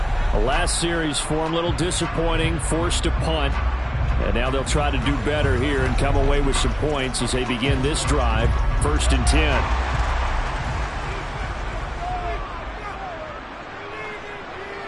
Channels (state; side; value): identical; both; correlation 1.00